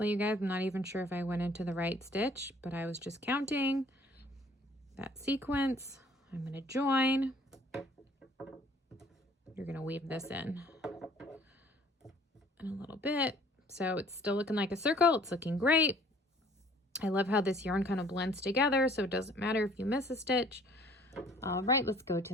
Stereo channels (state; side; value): normal; both; correlation 0.55